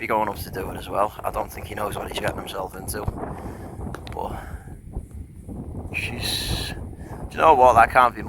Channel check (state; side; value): identical; both; correlation 1.00